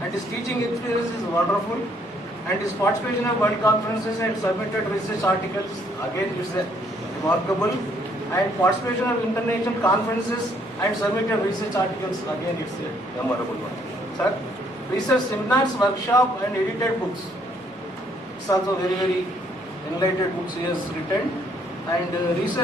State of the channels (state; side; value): normal; both; correlation 0.67